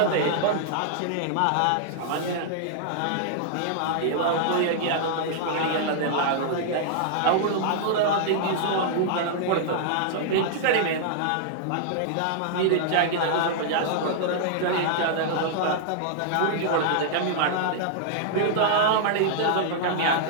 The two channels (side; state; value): both; different; correlation -0.01